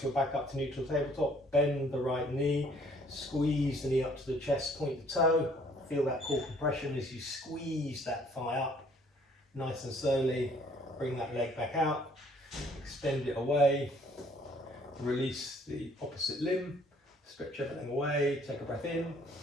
you're back up to neutral tabletop, bend the right knee, squeeze the knee up to the chest, point the toe, feel that core compression as you squeeze that thigh up. Nice and slowly, bring that leg back out, extend it away, release the opposite limb, stretch everything away, take a breath in,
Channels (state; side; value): normal; both; correlation 0.60